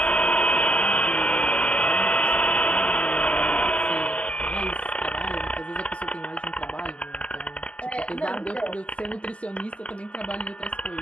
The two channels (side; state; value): right; late; 0.059 ms